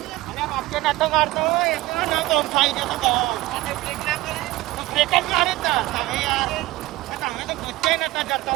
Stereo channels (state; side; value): quieter; left; 18.3 dB